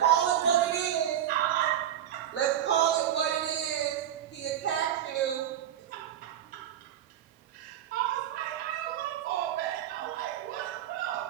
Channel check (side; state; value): left; quieter; 10.9 dB